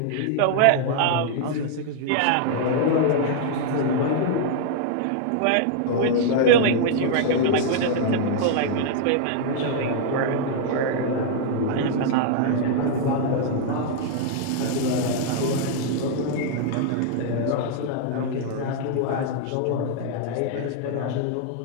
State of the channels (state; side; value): different; both; correlation -0.01